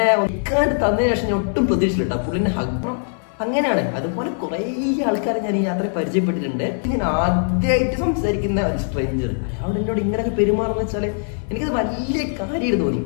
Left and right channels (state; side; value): silent; right; digital silence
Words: ഒക്കാണ്ട് തന്നതിന് ശേഷം ഞാൻ ഒട്ടും പ്രതീക്ഷിച്ചില്ല പുള്ളിന്റെ ഹഗ്. അങ്ങനെയാണ്. അതുപോലെ കുറെ ആൾക്കാരെ ഞാൻ ഈ യാത്രയിൽ പരിചയപ്പെട്ടിട്ടുണ്ട്. ഞാൻ ആദ്യമായിട്ട് സംസാരിക്കുന്ന ഒരു സ്ട്രേഞ്ചർ അയാളോട് എന്നോട് ഇങ്ങനെയൊക്കെ പെരുമാറുന്ന വെച്ചാല് എനിക്കത് വലിയ കാര്യമായിട്ട് തോന്നി.